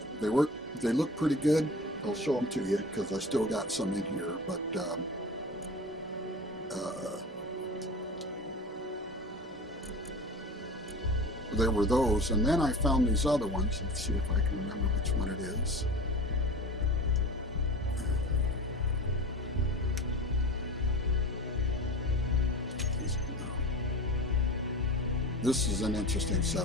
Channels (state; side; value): normal; both; correlation 0.35